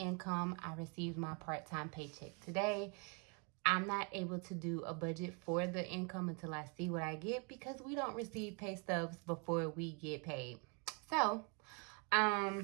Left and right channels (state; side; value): quieter; left; 35.0 dB